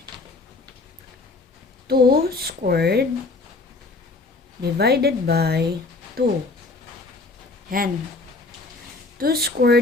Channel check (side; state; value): right; quieter; 3.6 dB